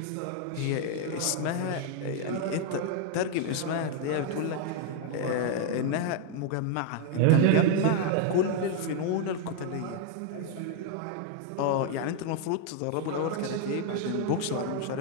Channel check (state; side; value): different; both; correlation 0.01